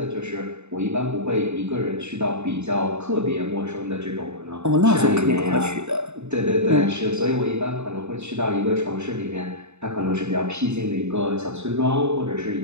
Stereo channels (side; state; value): left; late; 0.82 ms